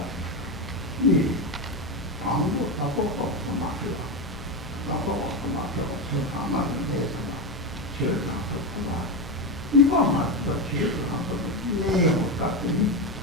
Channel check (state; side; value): normal; both; correlation 0.13